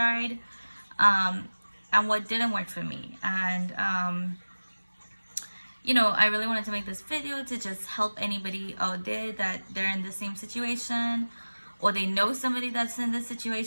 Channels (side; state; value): both; inverted; correlation -1.00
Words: and what didn't work for me. And I really wanted to make this video to just help anybody out there that they're in the same situation or they know somebody that's in this